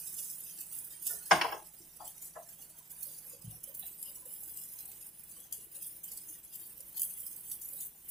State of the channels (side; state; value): both; normal; correlation 0.48